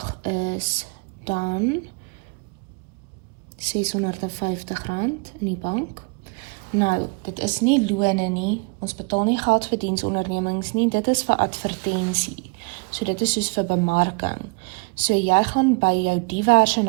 is dan R650 in die bank. Nou, dit is nie lone nie, ons betaal nie geld vir diensondernemings nie, dit is vir advertensie. So dit is soos vir bemarking. So jy gaan by jou diverse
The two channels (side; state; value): left; quieter; 31.9 dB